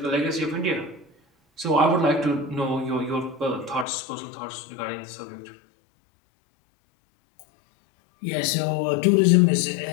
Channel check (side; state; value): right; drops out; at 3.9 s